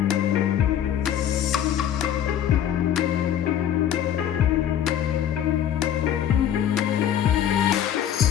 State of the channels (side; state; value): right; quieter; 10.1 dB